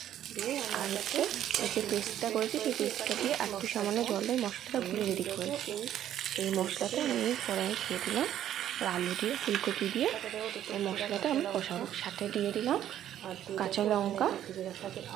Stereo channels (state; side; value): quieter; left; 11.3 dB